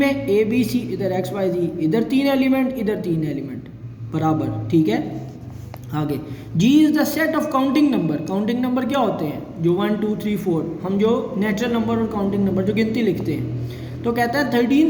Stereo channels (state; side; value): identical; both; correlation 1.00